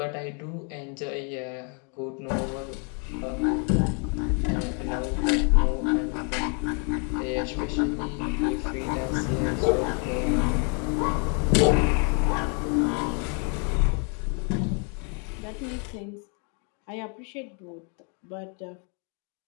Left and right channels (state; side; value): quieter; right; 38.3 dB